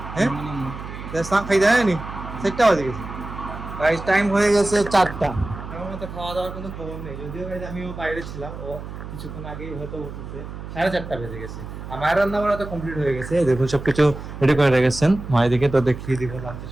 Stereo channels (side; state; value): right; noise; hum, 10 dB below the sound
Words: হ্যাঁ খাই দেয় নি, সেটটা হয়ে গেছে গাইস। টাইম হয়ে গেছে 4টা। আমার মতো খাওয়া দাওয়ার কোনো খবর নেই, যদিও গাইস আমিও বাইরে ছিলাম, ও কিছুক্ষণ আগেই হয়তো উঠেছে। 4:30 বেজে গেছে, আমার রান্না বান্না তো কমপ্লিট হয়ে গেছে। দেখুন সবকিছু রেডি করে রেখেছেন, মায়ের দিকে তো দেখিয়ে দিব লাঞ্চের